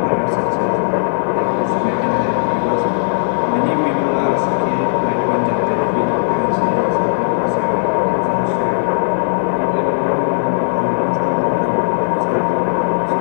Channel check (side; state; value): right; silent; digital silence